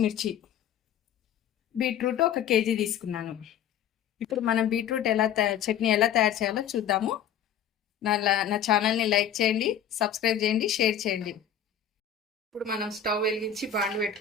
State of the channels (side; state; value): right; quieter; 8.8 dB